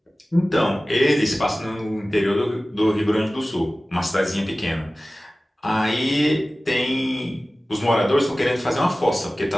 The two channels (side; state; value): both; normal; correlation 0.97